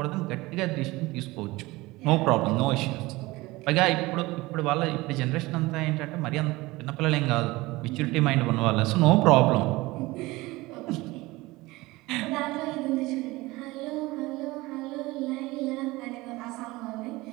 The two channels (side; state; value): left; quieter; 20.7 dB